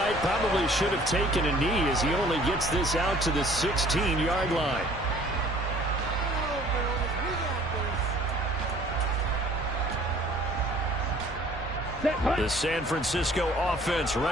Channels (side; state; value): both; normal; correlation 0.54